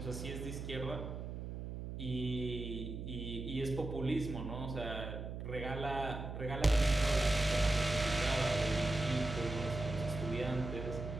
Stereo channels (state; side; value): noise; right; hum, 6 dB below the sound